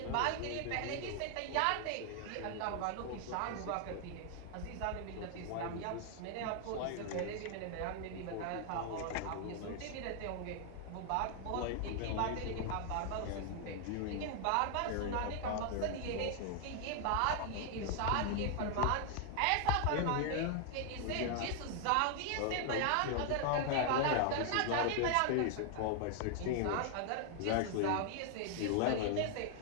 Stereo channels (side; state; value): both; different; correlation 0.00